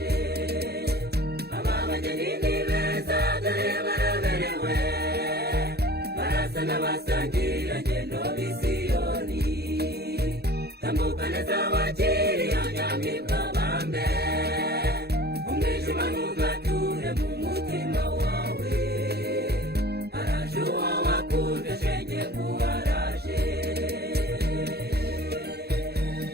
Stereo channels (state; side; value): late; left; 0.47 ms